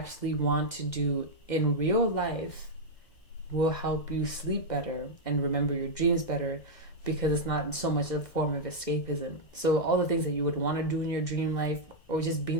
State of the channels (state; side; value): late; right; 1.6 ms